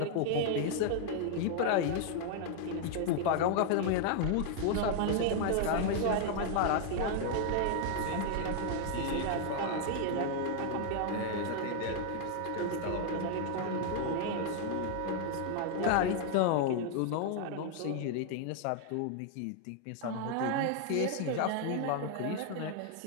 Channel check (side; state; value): both; different; correlation 0.00